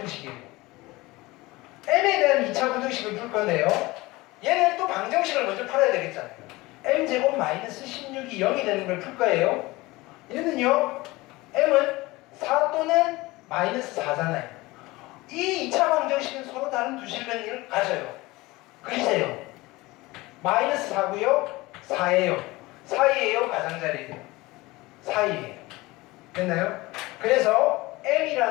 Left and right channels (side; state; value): right; quieter; 21.0 dB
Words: m에 대한 2차 부등식을 풀 건데요, 얘는 또 방정식을 먼저 풀어야 되겠잖아요. m제곱 마이너스 16이 0이 되는 걸 풀 거예요. 얘는요, m은 4 또는 마이너스 4잖아요. 이 2차 방정식은 서로 다른 두 실근을 가져요. 그리세요. 마이너스 4고요, 4예요. 사이에요, 가장자리에요? 사이에요. 됐나요? 그래서